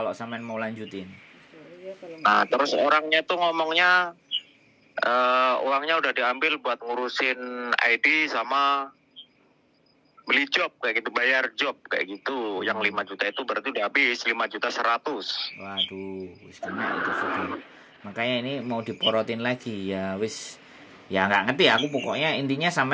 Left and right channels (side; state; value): both; identical; correlation 1.00